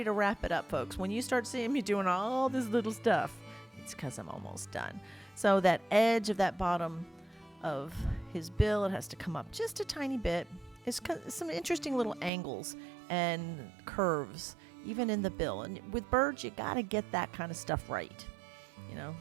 to wrap it up, folks. When you start seeing me doing all this little stuff, it's because I'm almost done. So that edge of that bottom of his bill, it has to come up just a tiny bit. It's some interesting little angles and curves, even in the bill. And with birds, you got to get that kind of stuff right. You know,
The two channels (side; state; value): left; drops out; at 12.3 s